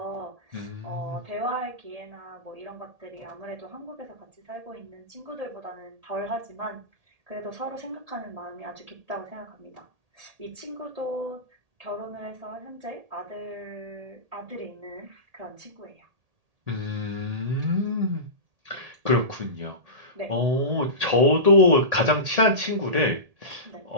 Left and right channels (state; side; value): late; left; 1.8 ms